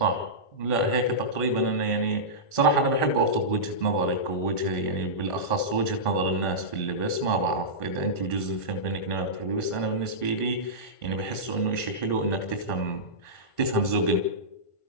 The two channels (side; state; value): right; late; 1.5 ms